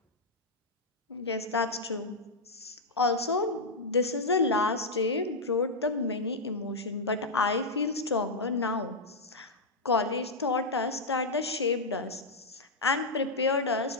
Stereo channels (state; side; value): quieter; right; 3.0 dB